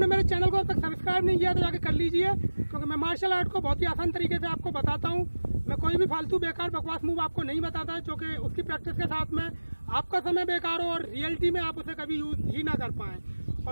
मेरे चैनल को अब तक सब्सक्राइब नहीं किया तो जाके कर लीजिए, क्योंकि मैं मार्शल आर्ट को बहुत ही आसान तरीके से आपको बताता हूँ। मैं कोई भी फालतू बेकार बकवास मूव आपको नहीं बताता है, क्योंकि उसकी प्रैक्टिस के साथ में आपका समय बेकार हो और रियलिटी में आप उसे कभी यूज ही ना कर पाएँ।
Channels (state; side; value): inverted; both; correlation -1.00